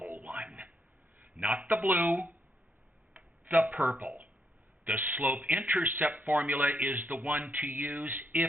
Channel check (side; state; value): both; normal; correlation 0.76